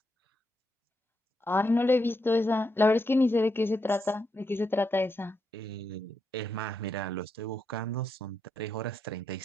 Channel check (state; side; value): normal; both; correlation 0.82